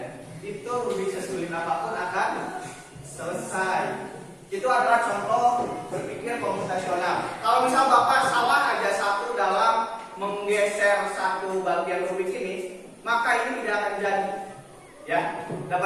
itu rubik sesulit apapun akan selesai. Itu adalah contoh berpikir komputasional. Kalau misal Bapak salah aja satu dalam menggeser satu bagian rubik ini, maka ini tidak akan jadi. Ya,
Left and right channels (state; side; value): identical; both; correlation 1.00